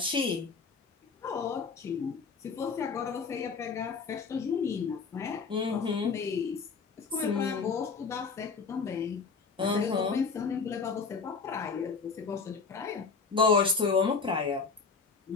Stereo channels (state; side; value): quieter; right; 4.9 dB